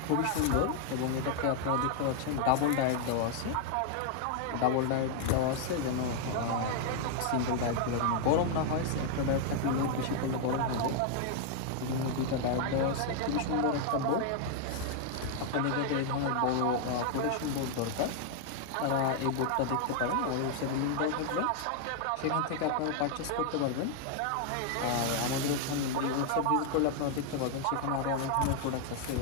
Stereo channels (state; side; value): different; both; correlation 0.00